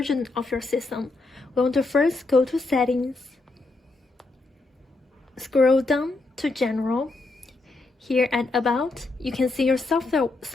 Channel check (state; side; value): quieter; right; 3.3 dB